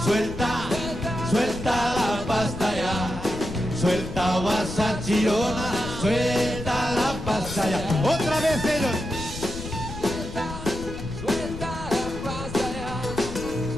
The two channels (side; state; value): left; noise; rumble, 10 dB below the sound